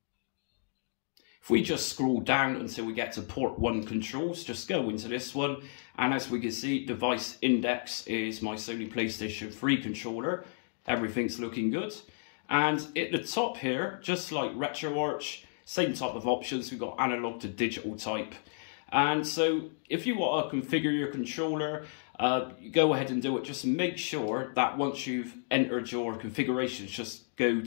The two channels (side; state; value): right; silent; digital silence